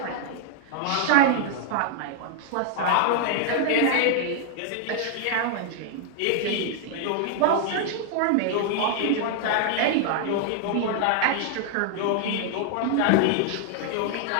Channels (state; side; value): different; both; correlation 0.00